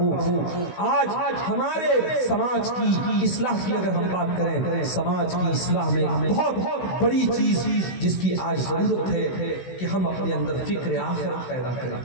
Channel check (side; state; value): right; late; 16 ms